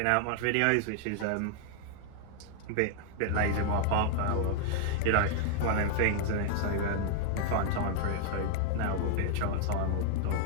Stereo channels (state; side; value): different; both; correlation 0.00